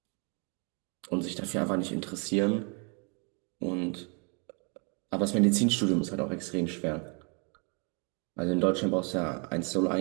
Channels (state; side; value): quieter; left; 35.7 dB